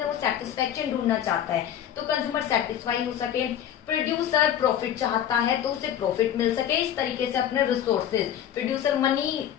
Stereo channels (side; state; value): right; quieter; 10.2 dB